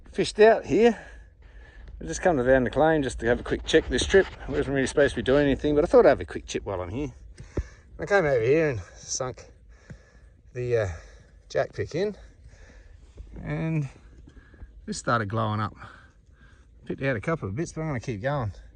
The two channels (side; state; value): both; identical; correlation 1.00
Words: fished out here. I just come down the claim just to have a quick check this trip. I wasn't really supposed to be doing anything, but I thought I'd have a quick chip while I'm here. I came over here and sunk the jack pick in, and this started glowing up. Picked out a couple of bits, but I'm going to keep going,